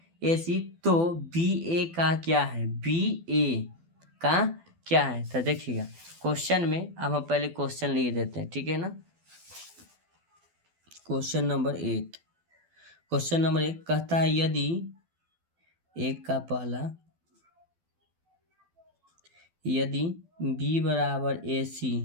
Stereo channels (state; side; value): late; left; 12 ms